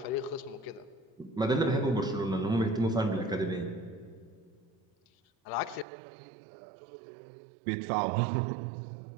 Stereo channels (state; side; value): drops out; left; at 5.9 s